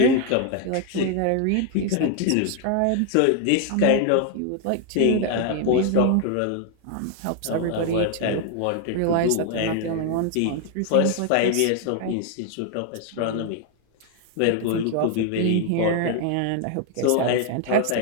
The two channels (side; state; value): both; different; correlation 0.00